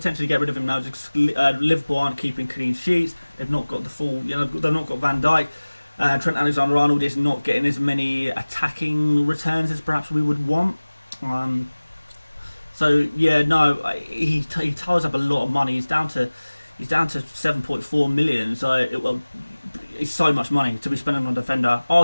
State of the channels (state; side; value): inverted; both; correlation -1.00